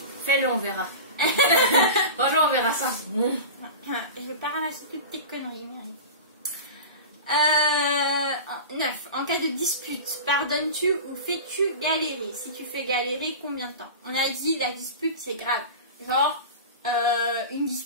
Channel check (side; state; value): both; inverted; correlation -0.30